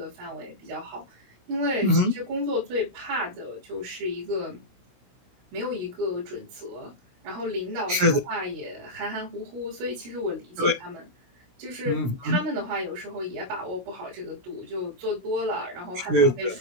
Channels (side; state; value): left; late; 16 ms